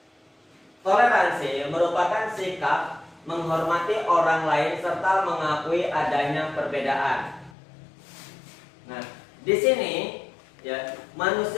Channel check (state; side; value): drops out; right; at 7.5 s